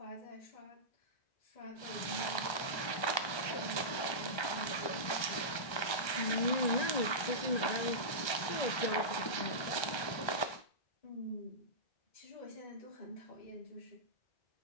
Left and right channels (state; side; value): late; right; 1.3 ms